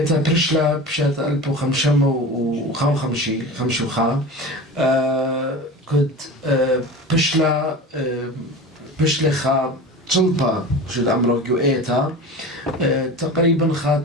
برشلا بشات 1555 كنت بشلا خا تلبا شد عمرو جو إيتا تقريبا خا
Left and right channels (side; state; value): both; normal; correlation 0.32